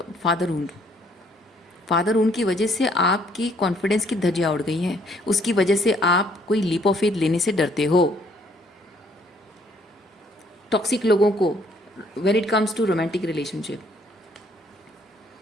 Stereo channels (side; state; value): both; normal; correlation 0.64